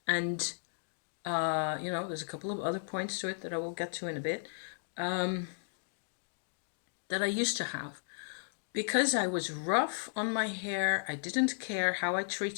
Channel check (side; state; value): right; silent; digital silence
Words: and there's a couple of other points to it that I will get to in a bit, that I used to have. Because I was rough on my hair, I didn't care how I